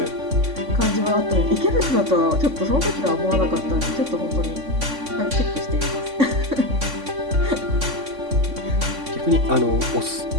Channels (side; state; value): left; late; 3.6 ms